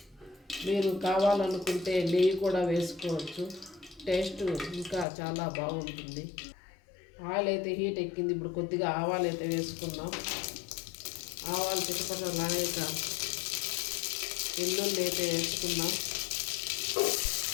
మీరు కావాలనుకుంటే నెయ్యి కూడా వేసుకోవచ్చు. టేస్ట్ ఇంకా చాలా బాగుంటుంది. ఆయిల్ అయితే హీట్ ఎక్కింది. ఇప్పుడు కొద్దిగా ఆవాలు అయితే వేసుకుందాం. ఆవాలు చిటపటలాడాక వెల్లుల్లి అయితే వేసుకుందాం.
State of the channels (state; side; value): drops out; right; at 5.1 s